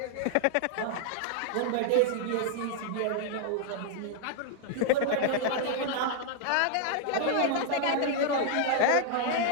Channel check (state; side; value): different; both; correlation 0.00